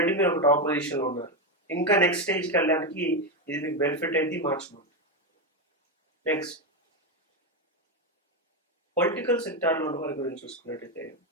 మీరు ఒక టాప్ పొజిషన్లో ఉన్నారు, ఇంకా నెక్స్ట్ స్టేజ్కి వెళ్ళడానికి ఇది మీకు బెనిఫిట్ అయింది మార్చ్ మంత్. నెక్స్ట్ పొలిటికల్ సెక్టార్లో ఉన్న వారి గురించి చూసుకున్నట్టయితే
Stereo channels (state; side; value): normal; both; correlation 0.10